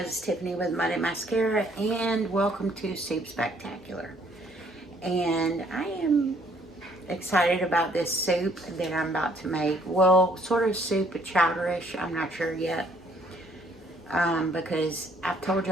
it's Tiffany with Muddy Mascara and welcome to Soup Spectacular. And I am excited about this soup that I'm about to make. Well, sort of soup, chowderish, I'm not sure yet. Because I've told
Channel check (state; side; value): normal; both; correlation 0.64